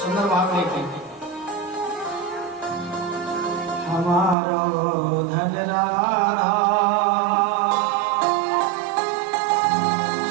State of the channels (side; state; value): left; drops out; at 4.4 s